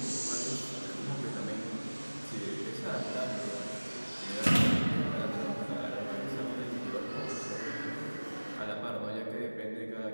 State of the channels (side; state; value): both; inverted; correlation -1.00